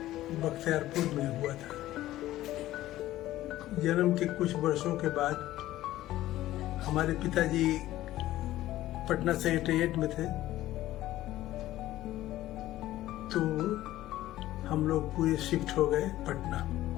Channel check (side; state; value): right; quieter; 15.0 dB